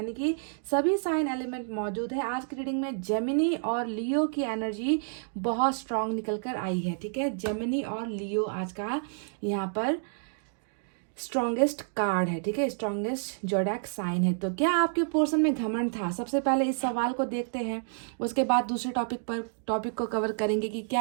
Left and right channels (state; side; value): silent; left; digital silence